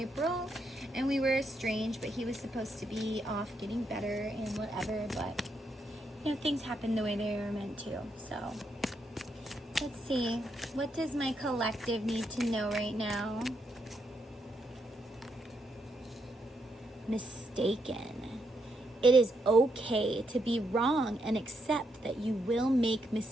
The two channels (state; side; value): normal; both; correlation 0.79